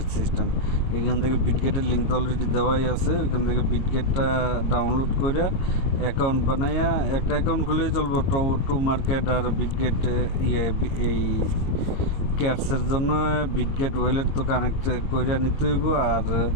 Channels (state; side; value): late; right; 22 ms